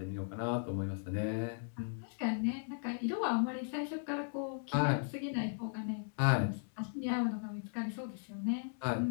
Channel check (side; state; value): right; silent; digital silence